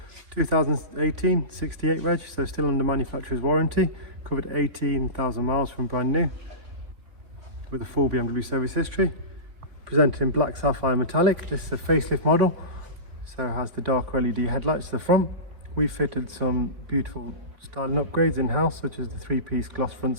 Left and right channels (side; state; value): left; late; 3.5 ms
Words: 2018 68 reg, so still under manufacturer's warranty, covered 18,000 miles from brand new, with a full BMW service history. Presented in black sapphire metallic. This is a facelift model, so it has the dark LED headlights to the front. We fitted some beautiful styling upgrades in-house, such as the 3-piece gloss front